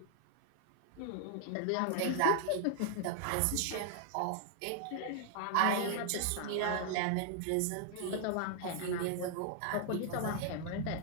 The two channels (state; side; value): different; both; correlation 0.00